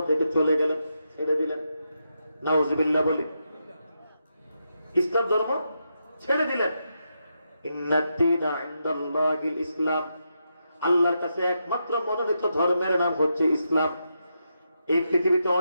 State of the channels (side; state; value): both; inverted; correlation -0.84